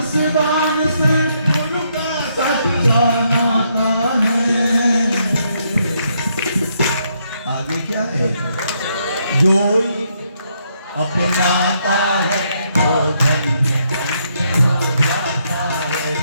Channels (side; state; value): both; inverted; correlation -0.75